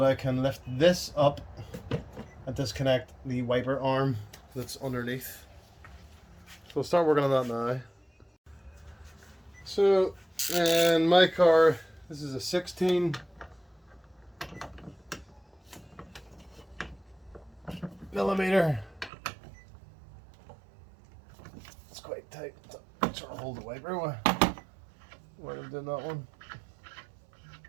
I can lift this up and disconnect the wiper arm that's underneath. So we'll start working on that now. So in my car, this is a 16 millimeter. It's quite tight. It's trying to hold the wiper while I'm doing that one.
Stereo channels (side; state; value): left; drops out; at 19.1 s